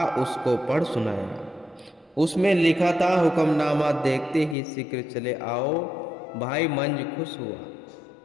उसको पढ़ सुनाया। उसमें लिखा था, हुक्मनामा देखते ही शीघ्र चले आओ। भाई मंज खुश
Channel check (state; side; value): drops out; right; at 4.5 s